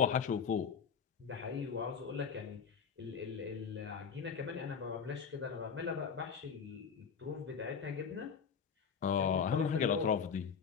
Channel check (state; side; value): quieter; right; 6.5 dB